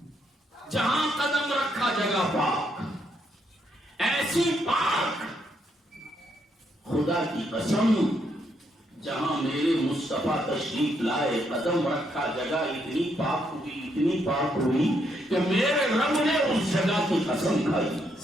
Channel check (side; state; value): both; normal; correlation 0.76